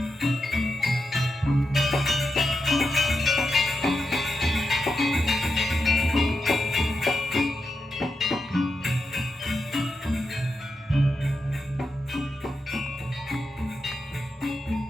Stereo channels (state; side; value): normal; both; correlation 0.87